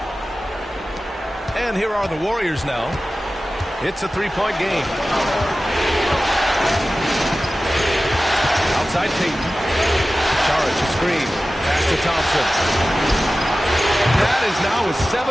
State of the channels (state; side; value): normal; both; correlation 0.96